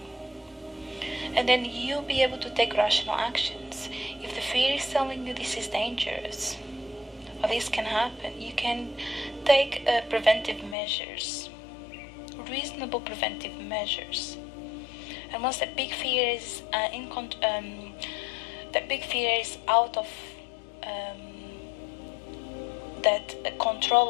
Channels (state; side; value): drops out; right; at 10.8 s